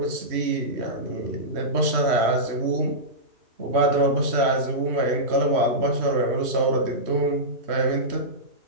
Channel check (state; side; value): late; left; 3.1 ms